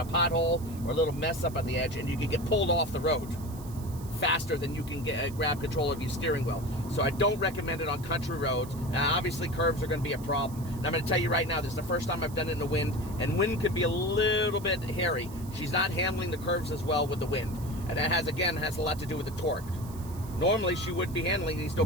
pothole or a little mess up on the edge, and you can get pulled off the road faster than you can grab control of your steering wheel. So I don't recommend it on country roads. Now, obviously, curves are going to be a problem. And I'm going to tell you right now, this is the first time I've done it in the wind, and wind could be a little bit hairy. She's not handling the curves as well with the wind. And that has a lot to do with the torque. Normally, she would be handling these no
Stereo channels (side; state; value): right; noise; hiss, 19 dB below the sound